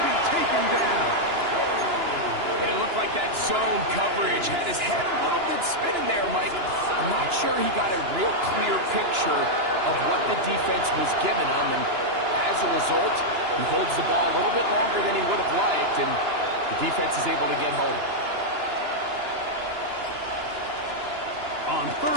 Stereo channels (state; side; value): late; left; 2.9 ms